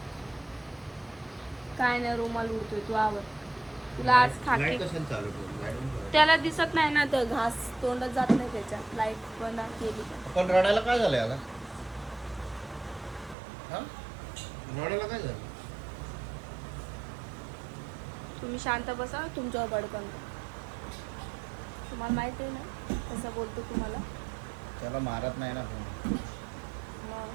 काय नाही रुमाल उडतोय. तू आवर. तुला आज खाते. लाईट कशाला चालू करू? लाईट बंद करा. त्याला दिसत नाही ना तर घास तोंडात जात नाही त्याच्या. लाईट बंद केली का. पण रडायला काय झालं याला? हा? रडायला काय झालं? तुम्ही शांत बसा. तुमच्यावर बडकन. तुम्हाला माहिती आहे ना कसं बोलतो तुम्हाला. त्याला मारत नाही ना कोणी. मग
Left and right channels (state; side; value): drops out; left; at 13.4 s